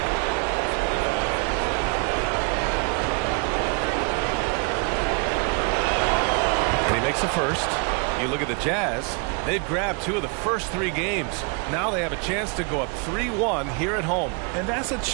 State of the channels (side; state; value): left; quieter; 34.9 dB